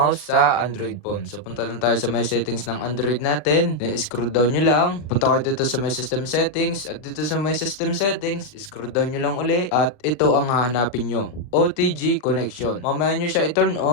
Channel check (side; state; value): right; late; 40 ms